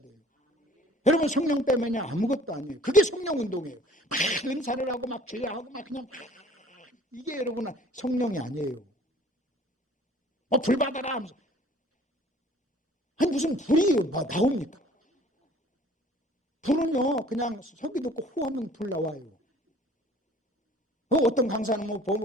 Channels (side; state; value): both; normal; correlation 0.52